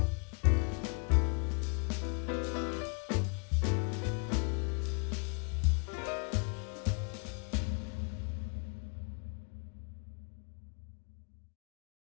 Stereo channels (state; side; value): quieter; right; 37.5 dB